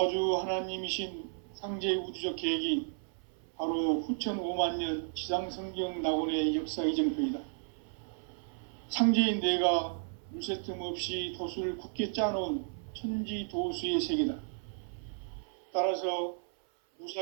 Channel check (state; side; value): silent; left; 55 dB below the other